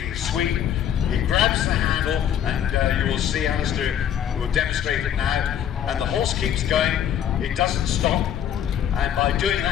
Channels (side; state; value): right; quieter; 9.8 dB